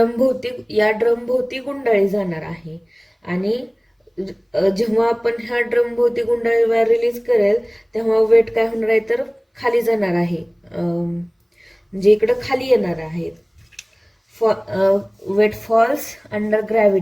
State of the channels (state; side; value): identical; both; correlation 1.00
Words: भोवती गुंडाळी जाणार आहे. आणि जेव्हा आपण ह्या ड्रम भोवती गुंडाळी रिलीज करेल तेव्हा वेट काय होणार आहे तर खाली जाणार आहे, म्हणजे इकडं खाली येणार आहे. वेट फॉल्स अंडर